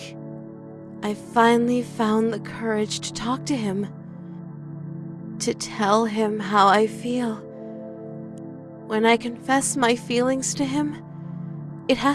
I finally found the courage to talk to him, to tell him how I feel. When I confess my feelings to him, it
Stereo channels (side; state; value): both; identical; correlation 1.00